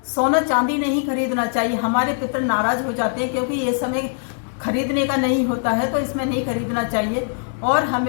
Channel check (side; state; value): right; silent; digital silence